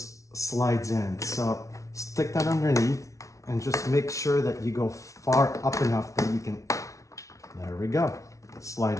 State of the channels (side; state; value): right; late; 0.15 ms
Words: slides in. So stick that underneath and just make sure that you go far up enough that you can, there we go, slide